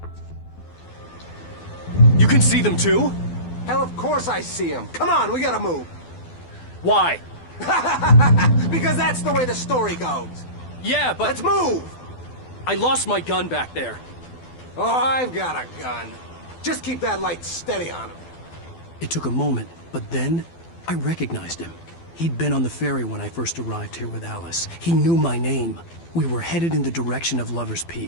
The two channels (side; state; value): right; late; 12 ms